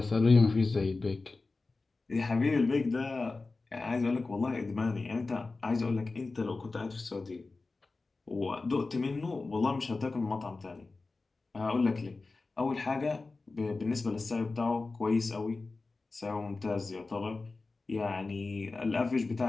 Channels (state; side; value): quieter; right; 3.7 dB